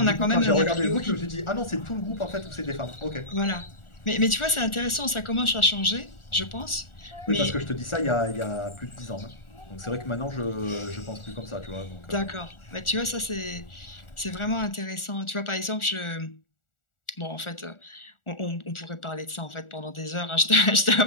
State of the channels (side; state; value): right; late; 1.4 ms